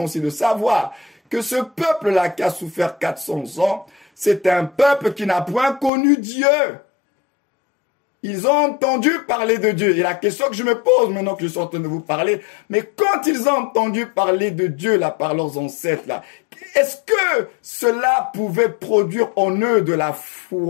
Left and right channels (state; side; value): drops out; right; at 5.9 s